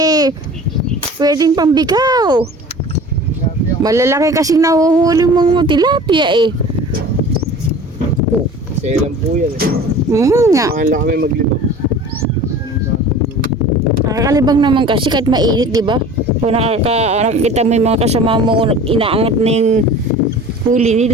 pwedeng pambikaw. Malalaki kasing nahuhuli mong tilapia eh. Selan po yan eh. Nga. Mahal lang kami maglibang. Nakakalibang naman kasi kahit mainit, di ba? Kung nakakita mo yung mga kasama mo, inaangat na yung huli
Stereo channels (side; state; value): both; normal; correlation 0.42